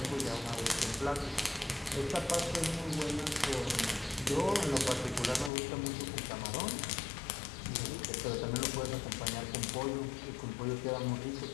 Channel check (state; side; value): drops out; right; at 5.5 s